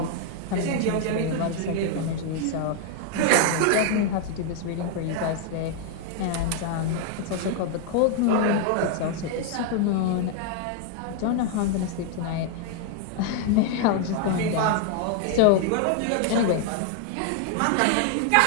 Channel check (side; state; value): both; different; correlation 0.00